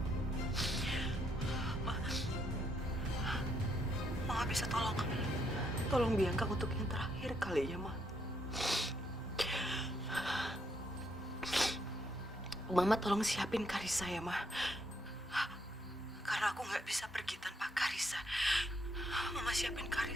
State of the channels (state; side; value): normal; both; correlation 0.74